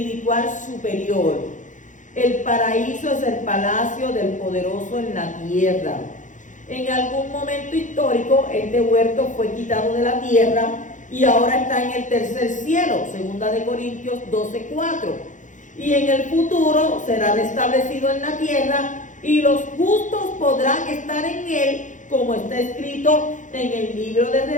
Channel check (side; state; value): right; late; 0.37 ms